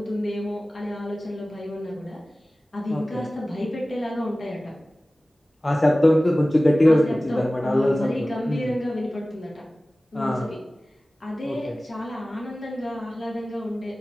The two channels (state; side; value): normal; both; correlation 0.97